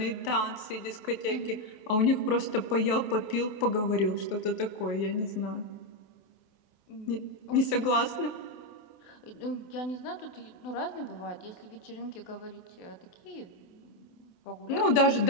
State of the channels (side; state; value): right; late; 28 ms